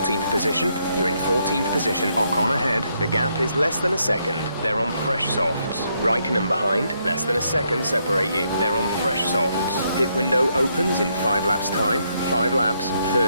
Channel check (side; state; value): both; inverted; correlation -0.76